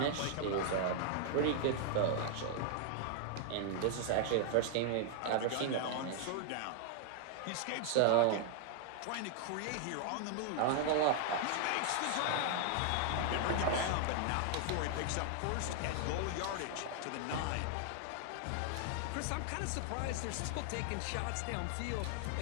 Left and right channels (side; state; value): both; different; correlation 0.00